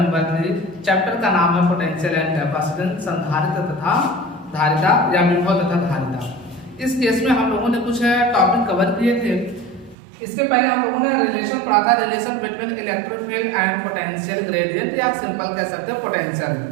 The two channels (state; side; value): drops out; left; at 10.0 s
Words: 3। चैप्टर का नाम है पोटेंशियल एंड कैपेसिटेंस, संधारित्र तथा धारिता या विभव तथा धारिता। इस केस में हम लोगों ने कुछ टॉपिक कवर किए थे। इसके पहले हम लोगों ने रिलेशन पढ़ा था, relation between electric field and potential gradient, या सिंपल कह सकते हैं पोटेंशियल।